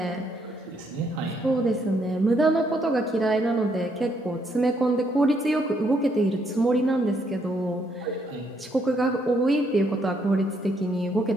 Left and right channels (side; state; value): both; normal; correlation 0.72